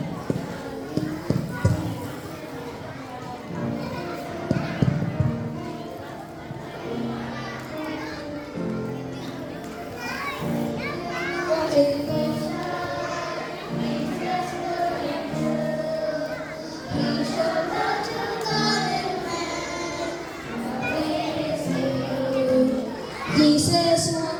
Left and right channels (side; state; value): both; identical; correlation 1.00